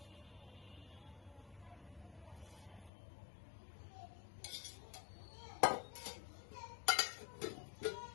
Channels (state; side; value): drops out; right; at 2.9 s